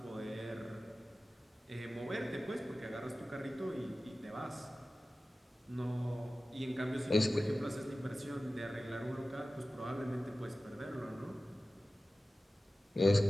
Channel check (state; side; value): normal; both; correlation 0.96